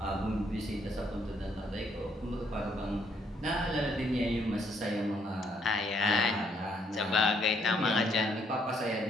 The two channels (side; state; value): both; normal; correlation 0.69